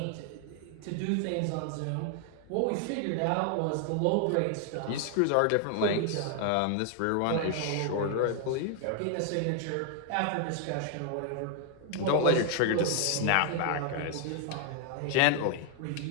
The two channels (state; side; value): different; both; correlation 0.00